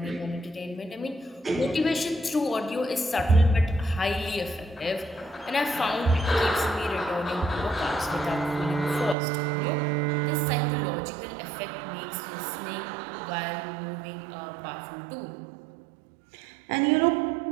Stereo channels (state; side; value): drops out; left; at 9.2 s